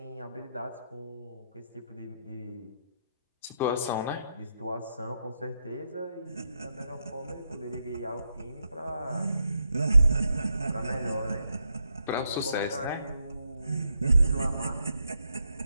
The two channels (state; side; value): inverted; both; correlation -0.82